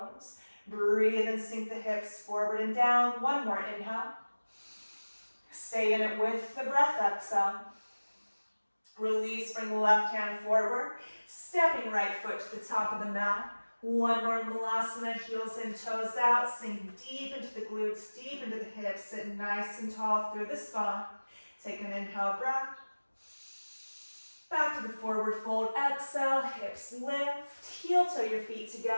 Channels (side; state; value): both; inverted; correlation -1.00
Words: Breathe and sink the hips forward and down. 1 more inhale. Stay in it with the breath, exhale. Release, bring the left hand forward. Stepping right foot to the top of the mat. 1 more Malasana, heels in, toes out. Sink deep into the glutes, deep into the hips. Sit nice and tall through the spine. Take an inhale breath. Back to the forward fold, exhale, hips lift. Heel toe your feet